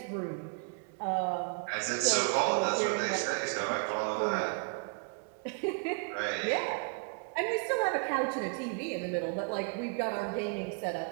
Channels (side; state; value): left; quieter; 36.2 dB